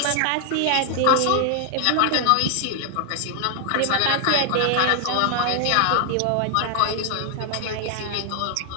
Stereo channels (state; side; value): different; both; correlation 0.00